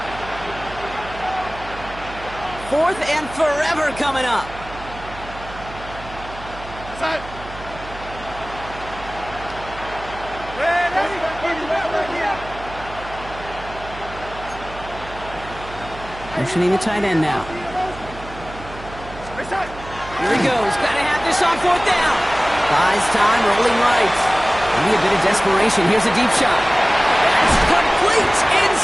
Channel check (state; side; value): noise; right; hum, 15 dB below the sound